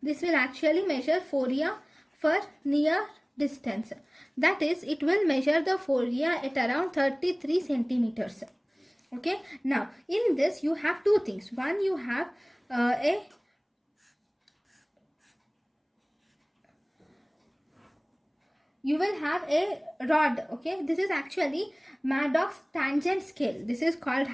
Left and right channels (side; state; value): both; identical; correlation 1.00